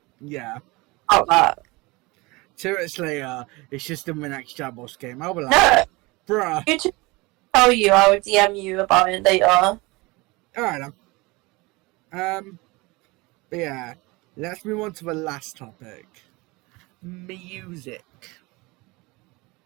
Yeah. About that. 2 minutes later, it's just in my next Jabbos game. I'll be like, No, bruh. you to tell you, I would DM you about it later. Alright then. But yeah, let's move on to the last topic. Music.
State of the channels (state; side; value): quieter; left; 24.0 dB